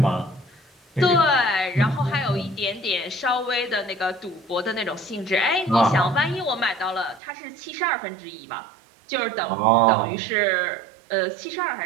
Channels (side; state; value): left; drops out; at 7.2 s